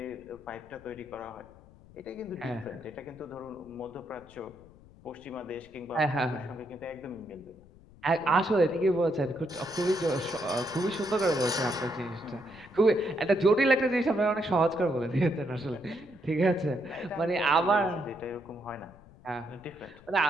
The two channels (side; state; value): left; noise; rumble, 23 dB below the sound